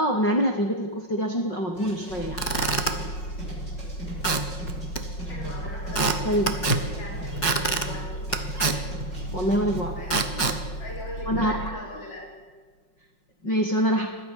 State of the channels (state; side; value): late; right; 5.5 ms